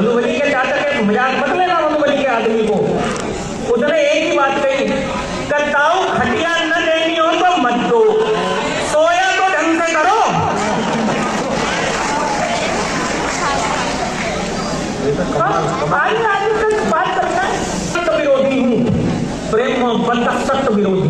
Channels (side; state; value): both; identical; correlation 1.00